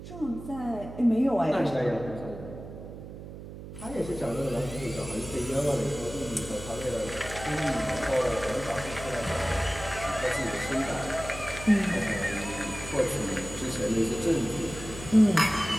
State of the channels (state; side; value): noise; right; hum, 12 dB below the sound